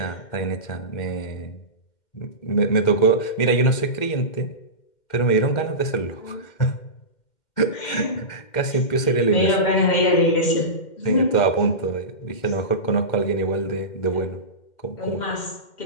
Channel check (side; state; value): right; late; 2.1 ms